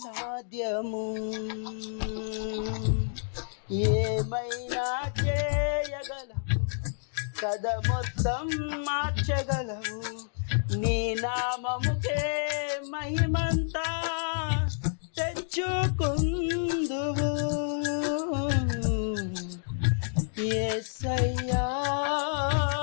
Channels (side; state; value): right; silent; digital silence